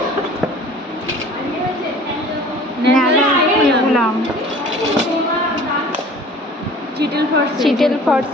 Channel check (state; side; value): normal; both; correlation 0.46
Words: Cheatle forceps, Cheatle